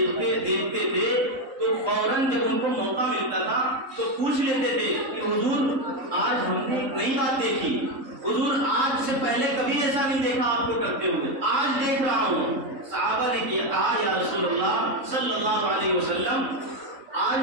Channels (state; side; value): late; left; 3.7 ms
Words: تھے تو فوراً جب ان کو موقع ملتا تھا تو پوچھ لیتے تھے کہ حضور آج ہم نے ایک نئی بات دیکھی، حضور آج سے پہلے کبھی ایسا نہیں دیکھا آپ کو کرتے ہوئے، آج دیکھ رہا ہوں۔ صحابہ نے کہا یا رسول اللہ صلی اللہ علیہ وسلم،